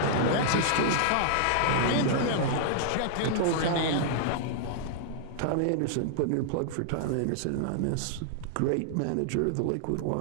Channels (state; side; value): different; both; correlation -0.01